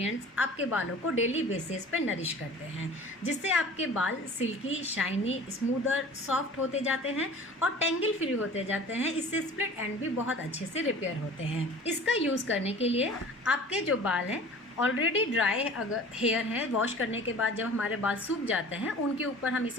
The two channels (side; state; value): both; normal; correlation 0.43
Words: आपके बालों को डेली बेसिस पे नरिश करते हैं, जिससे आपके बाल सिल्की, शाइनी, स्मूदर, सॉफ्ट होते जाते हैं और टेंगल फ्री होते जाते हैं। इससे स्प्लिट एंड भी बहुत अच्छे से रिपेयर होते हैं। इसका यूज़ करने के लिए आपके जो बाल हैं ऑलरेडी ड्राई अगर हेयर है, वॉश करने के बाद जब हमारे बाल सूख जाते हैं उनके ऊपर हम